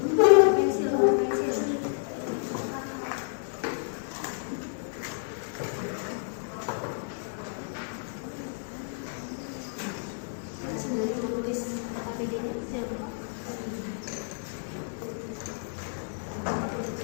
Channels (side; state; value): right; silent; 58 dB below the other